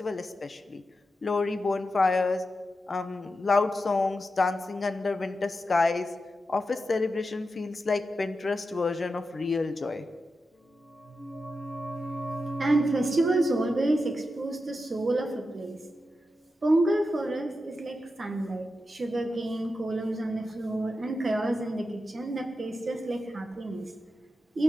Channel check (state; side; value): normal; both; correlation 0.90